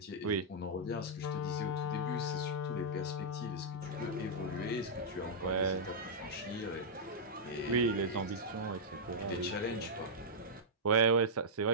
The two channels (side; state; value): both; normal; correlation -0.10